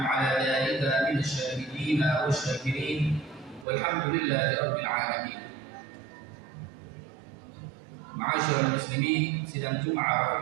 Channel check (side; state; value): left; drops out; at 3.7 s